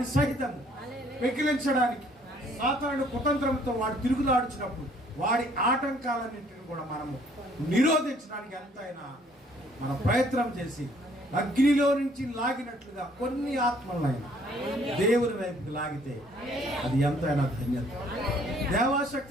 సహితం పెకిలించడానికి సాతానుడు కుతంత్రంతో వాడు తిరుగులాడుచినప్పుడు వాడి ఆటంకాలన్నింటిని కూడా మనము నిరోధించడానికి ఎంతైనా మన ప్రయత్నం చేసి అగ్నిలో నుంచి లాగినట్లుగా కొన్ని ఆత్మలైనా దేవుని వైపుకి లాగితే అది ఎంతైనా ధన్యత.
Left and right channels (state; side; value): normal; both; correlation 0.62